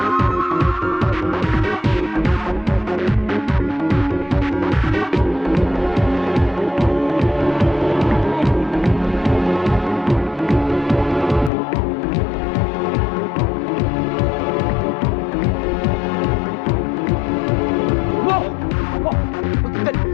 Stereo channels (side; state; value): right; drops out; at 11.5 s